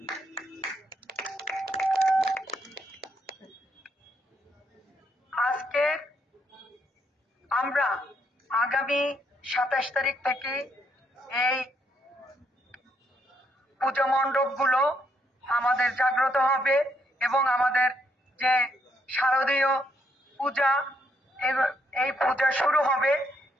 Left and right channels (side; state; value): both; normal; correlation 0.74